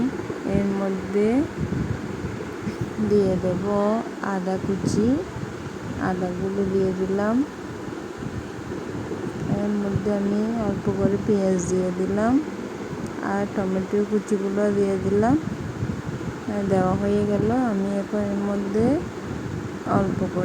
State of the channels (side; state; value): both; identical; correlation 1.00